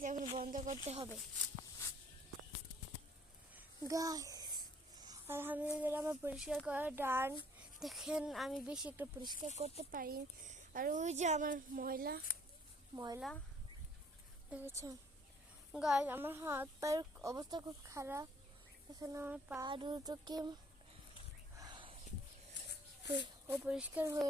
এখন বন্ধ করতে হবে। গাইস আলহামদুলিল্লাহ আমার পরিষ্কার করা ডান। দেখেন আমি বেশি একটা পরিষ্কার করতে পারি। আর ওই যে আমার ময়লা ময়লা দেখেছেন গাইস, আমার হাত পায়ের অবস্থা খুব খারাপ। এখানে আমার পা দুটোকে পরিষ্কার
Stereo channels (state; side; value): normal; both; correlation 0.60